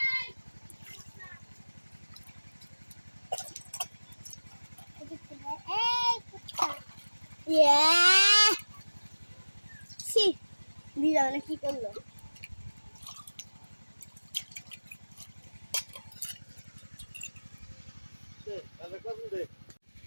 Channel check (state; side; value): inverted; both; correlation -1.00